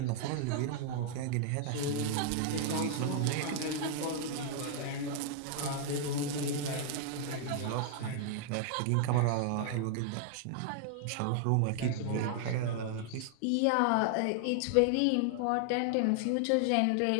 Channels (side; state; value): both; different; correlation 0.00